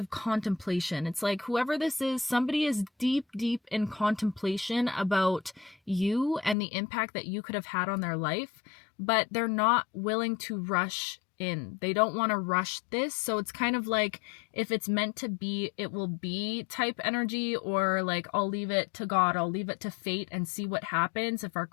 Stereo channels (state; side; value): drops out; right; at 6.6 s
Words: contemplation. It's like whoever this is, somebody is deep, deep in contemplation about you and the impact that you could have had on their life, but they're not willing to rush in. They don't want to rush this. So it's kind of like if it's meant to be, it will be type energy, or like I'll leave it to God, I'll leave it to fate and see what happens if